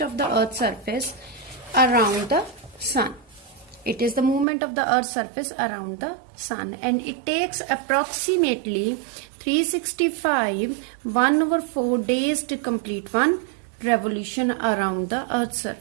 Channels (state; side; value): drops out; left; at 4.5 s